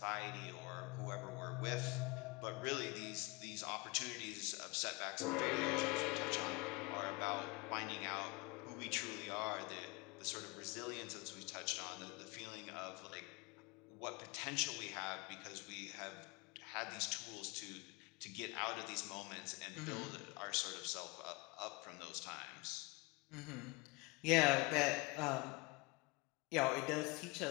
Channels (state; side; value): quieter; right; 26.0 dB